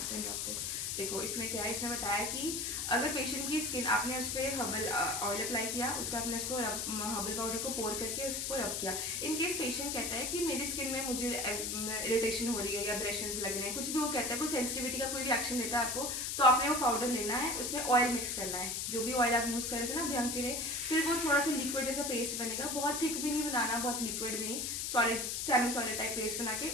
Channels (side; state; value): left; noise; hiss, 1 dB below the sound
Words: Then drop this. देखो इसमें क्या है, इसमें बताया कि अगर पेशेंट की स्किन आपने उस पर हर्बल ऑयल अप्लाई किया, उसका आपने उसको हर्बल पाउडर को पोर करके उसको रब किया। इन केस पेशेंट कहता है कि मेरी स्किन में मुझे इरिटेशन हो रही है या ब्रेशंस लग रहे हैं, कुछ भी वो कहता है, कोई सेंसिटिविटी का कोई भी एक्शन देता है आपको, तो आपने वो पाउडर लेना है, उसमें ऑयल मिक्स करना है, जो भी ऑयल आप यूज़ कर रहे थे ना अभ्यंग के लिए, फिर वो थोड़ा सा लिक्विड जैसा पेस्ट बनेगा, बहुत थिक भी नहीं बनाना, बहुत लिक्विड भी नहीं, solid semi solid type paste बना के